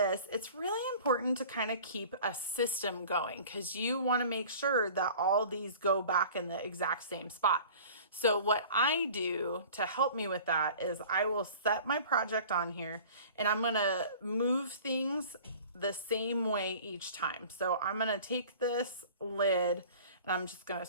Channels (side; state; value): both; inverted; correlation -0.44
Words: it's really important to kind of keep a system going, because you wanna make sure that all these go back in the exact same spot. So what I do to help me with that is I will set my project on here, and I'm going to move things the same way each time. So I'm going to take this lid and I'm just going to